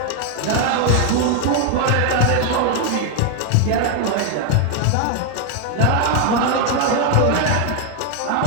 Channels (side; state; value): both; different; correlation 0.01